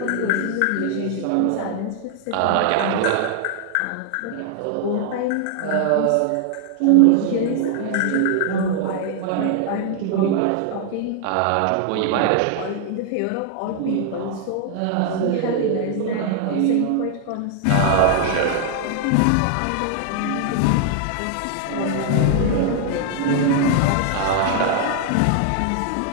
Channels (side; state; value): both; different; correlation 0.00